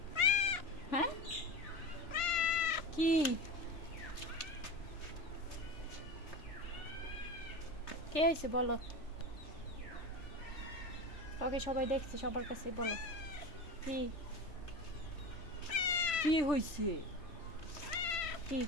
হ্যাঁ কি কে হয়েছে বলো? ওকে সবাই দেখছে, সবার কাছে বলো কি কি হয়েছে? কি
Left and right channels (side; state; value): right; late; 3.4 ms